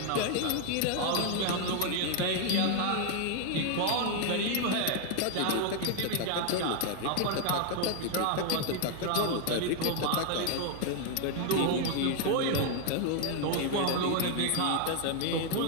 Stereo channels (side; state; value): both; different; correlation 0.00